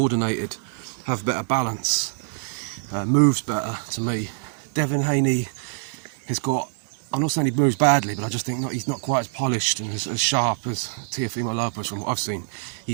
have better balance, moves better to me. Devin Haney has got, I'm not saying he moves badly, but I just think he's not quite as polished and as sharp as Teofimo Lopez from what I've seen.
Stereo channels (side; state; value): left; silent; digital silence